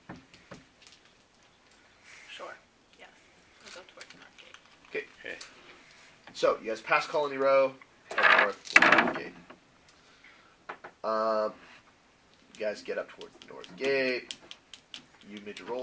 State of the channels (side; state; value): both; identical; correlation 1.00